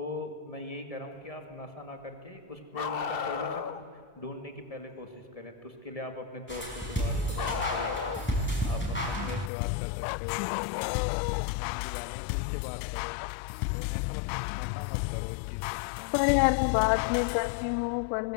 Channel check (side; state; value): right; drops out; at 9.5 s